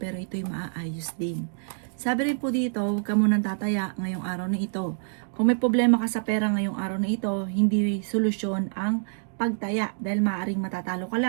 ito'y maaayos din. Sabi rin po dito, huwag ka munang tataya ngayong araw na ito. Kung may problema ka sa pera ngayong araw na ito, hindi solusyon ang pagtaya dahil maaaring matatalo ka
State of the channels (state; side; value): silent; left; digital silence